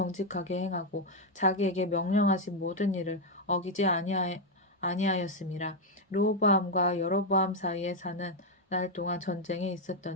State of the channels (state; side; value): normal; both; correlation 0.02